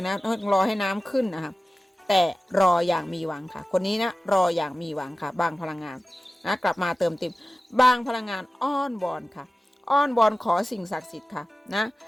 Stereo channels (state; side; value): normal; both; correlation 0.96